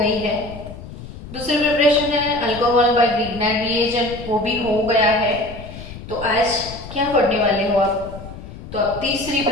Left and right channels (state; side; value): noise; left; rumble, 13 dB below the sound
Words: है। दूसरी प्रिपरेशन है अल्कोहल बाय ग्रिग्नार्ड रिएजेंट, वो भी हो गया है। तो आज क्या पढ़ने वाले हो आप? तो अब तीसरी